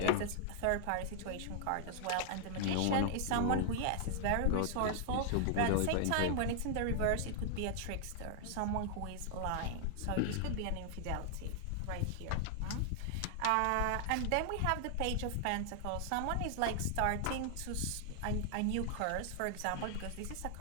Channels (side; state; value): both; different; correlation 0.00